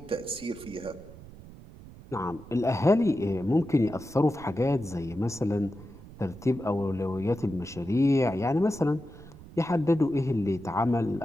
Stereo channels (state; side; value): noise; right; rumble, 18 dB below the sound